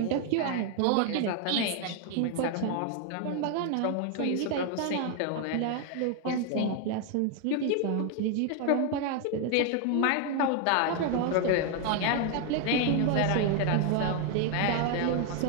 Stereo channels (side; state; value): both; different; correlation 0.01